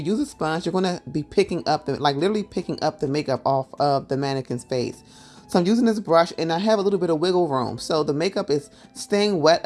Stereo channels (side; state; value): both; identical; correlation 1.00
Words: use a sponge, you're going to be picking up literally picking up the makeup off of the mannequin's face. So I'm using this brush and I have a little bit of wiggle room. So the makeup is staying